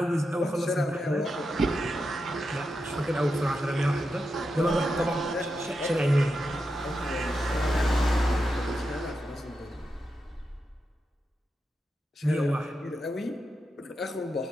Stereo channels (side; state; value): both; normal; correlation 0.88